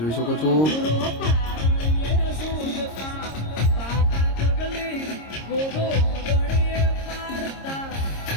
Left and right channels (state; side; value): late; right; 26 ms